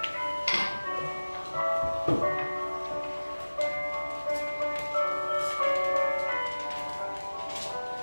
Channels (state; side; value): inverted; both; correlation -1.00